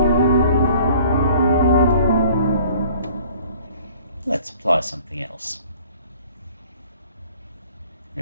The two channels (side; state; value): both; inverted; correlation -0.52